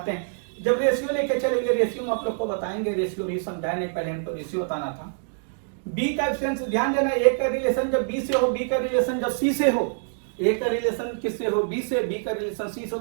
हैं। जब रेशियो लेके चलेंगे, रेशियो में आप लोग को बताएंगे, रेशियो भी समझाए नहीं, पहले हमको रेशियो बताना था। बी का एफिशिएंसी ध्यान देना, ए का रिलेशन जब बी से हो, बी का रिलेशन जब सी से हो, ए का रिलेशन किससे हो? बी से, बी का रिलेशन सी से हो,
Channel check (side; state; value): left; silent; digital silence